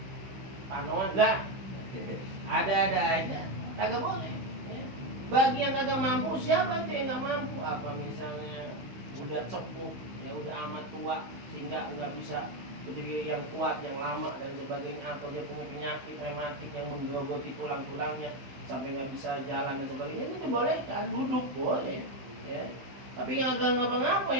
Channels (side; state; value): left; late; 15 ms